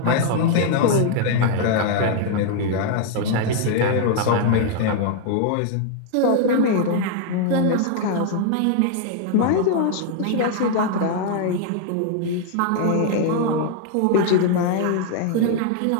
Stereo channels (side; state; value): both; different; correlation 0.00